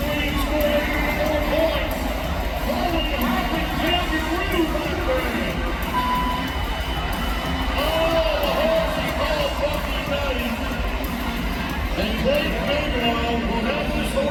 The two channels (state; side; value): identical; both; correlation 1.00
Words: and scored 84 points. Holy hopping kangaroo right there. Oh, the horse is called Bucky Betty. And Blake Bigelow will have this